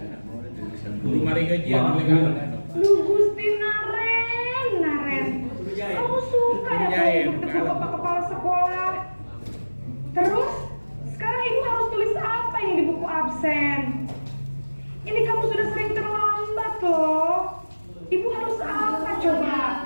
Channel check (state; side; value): inverted; both; correlation -1.00